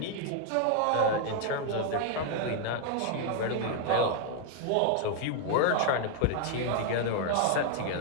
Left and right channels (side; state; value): both; different; correlation 0.00